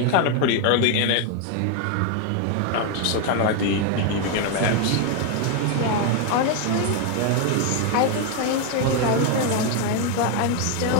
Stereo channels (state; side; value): different; both; correlation 0.01